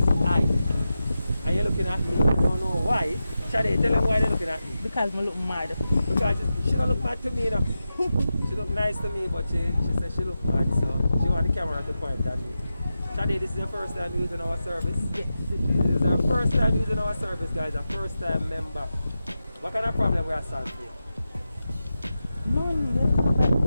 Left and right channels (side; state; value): both; inverted; correlation -0.91